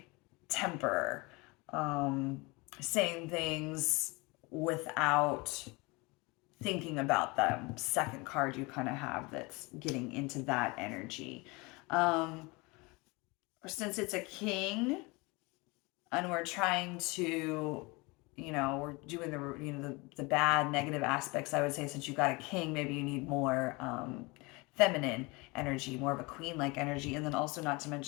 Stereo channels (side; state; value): right; quieter; 25.9 dB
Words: temper, saying things without thinking about them. Second card you kind of have that's getting into that energy. Since it's a king and we're trying to, we're doing the bad negative aspects, I would say since you got a king, maybe you need more feminine energy, more of a queen like energy. And then also, not to